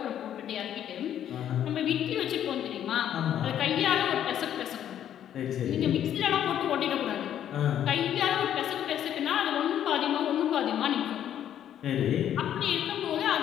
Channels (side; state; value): right; quieter; 10.4 dB